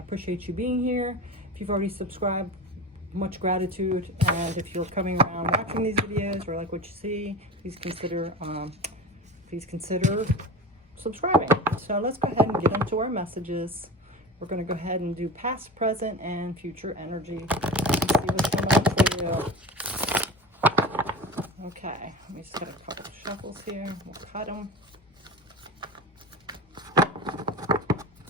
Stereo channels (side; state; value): both; normal; correlation 0.30